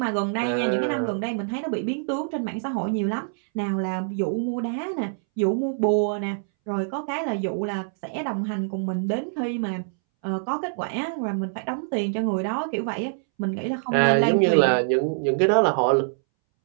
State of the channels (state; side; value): silent; left; 62 dB below the other